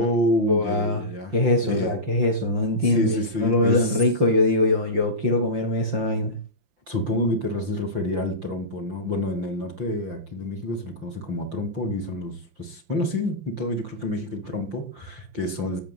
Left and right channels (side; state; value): left; late; 5.8 ms